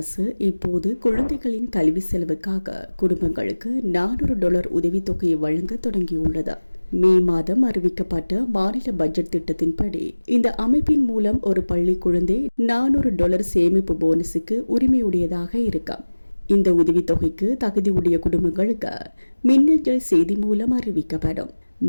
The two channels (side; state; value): both; inverted; correlation -1.00